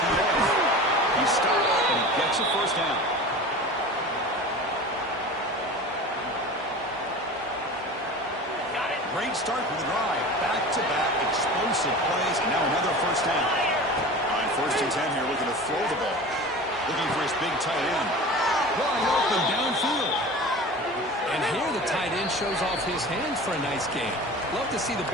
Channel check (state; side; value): normal; both; correlation 0.36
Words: He stops and he gets a first down. Great start for the drive. Back-to-back explosive plays, and now another first down. On 1st and 10 here, looking to throw the ball. Looking for his big tight end. Wide open downfield. And here the tight end shows off his hands for a nice game. Love to see the